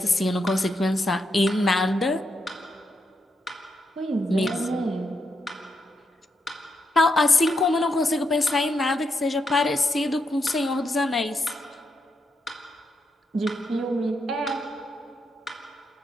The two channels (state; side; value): normal; both; correlation 0.82